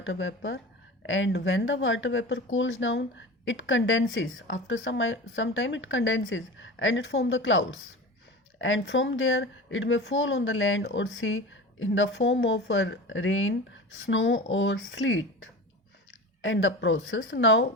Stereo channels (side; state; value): both; normal; correlation 0.32